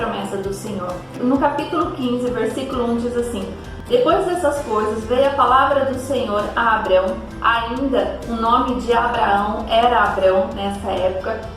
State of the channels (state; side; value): identical; both; correlation 1.00